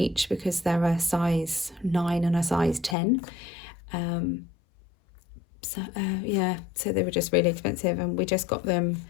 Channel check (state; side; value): drops out; right; at 3.0 s